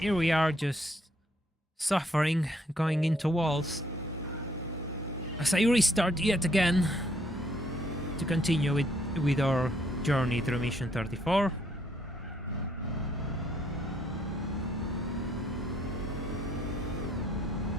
we are just suffering, going into walls. As I restart yet again to continue with our journey through mission 34.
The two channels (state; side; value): normal; both; correlation 0.69